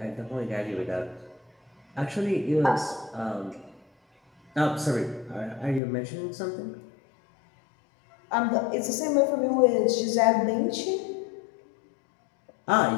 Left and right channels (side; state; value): right; drops out; at 5.8 s